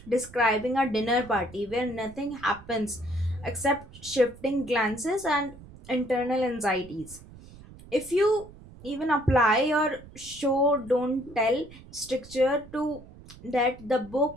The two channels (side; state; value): right; noise; rumble, 19 dB below the sound